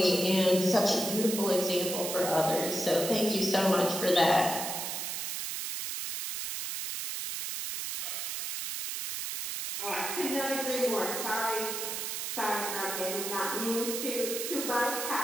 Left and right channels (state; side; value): noise; right; hiss, 4 dB below the sound